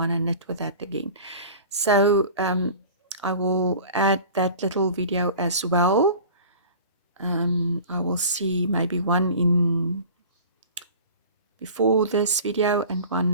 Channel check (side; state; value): both; inverted; correlation -0.41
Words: and knit with that again. So I will add that little video as well. I will see maybe one in before this video and